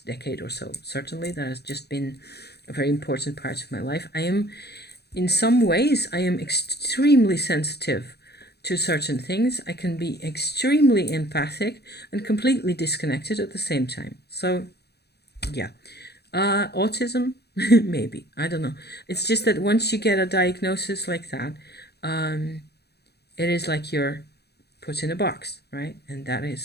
decade or so. Certainly that has just been a very important part of my life. In some ways I am extremely sensitive to certain things. I can be extremely empathic and completely disconnected at the same time. So yeah, autism, maybe, I don't know. It's just that once you get a diagnosis like that, it is like you're put in a box, right? And that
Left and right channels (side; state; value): right; late; 0.48 ms